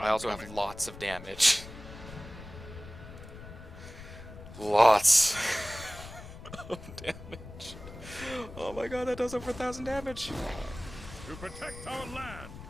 also have lots of damage. Lots of damage. Oh my god, that does over 1,000 damage. To protect our land.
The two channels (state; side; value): noise; left; rumble, 14 dB below the sound